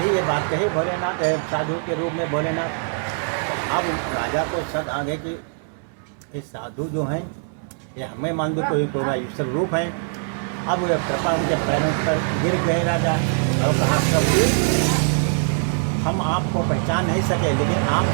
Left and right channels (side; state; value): left; silent; digital silence